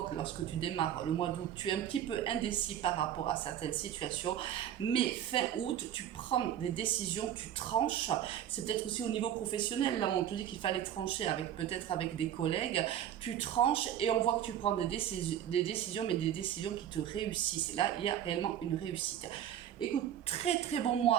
lorsque tu démarres le mois d'août, tu es un petit peu indécis par rapport à certaines situations, mais fin août, tu prends des décisions, tu tranches, c'est peut-être aussi au niveau professionnel, là on te dit qu'il fallait trancher avec peut-être avec des collègues, tu tranches et on voit que tu prends des décisions, mais des décisions qui te réussissent. Et là, il y a réellement une réussite. Écoute, très très bon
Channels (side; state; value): left; quieter; 10.6 dB